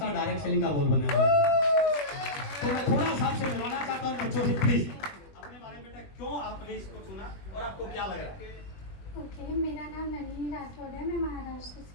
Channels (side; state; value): right; late; 21 ms